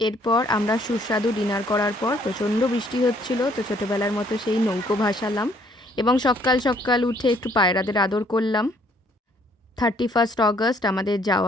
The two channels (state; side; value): normal; both; correlation 0.64